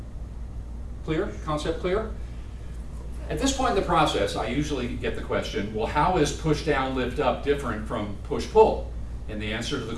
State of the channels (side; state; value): both; identical; correlation 1.00